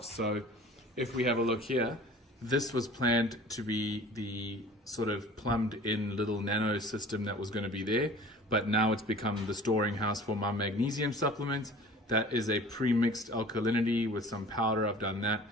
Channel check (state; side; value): normal; both; correlation 0.44